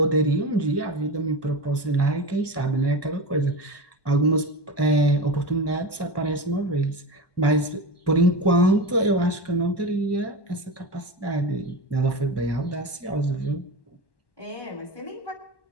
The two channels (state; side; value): late; right; 1.1 ms